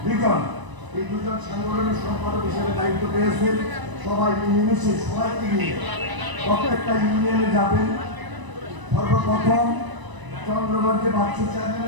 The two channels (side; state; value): left; late; 1.0 ms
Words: লিটন এই দুজন সাংগঠনিক সম্পাদক হিসেবে দায়িত্ব পেয়েছেন। সবাই মিলেমিশে সবাইকে নিয়ে প্রত্যেকটা ইউনিয়নে যাবেন। সর্বপ্রথম চন্দ্রগঞ্জে বাচ্চু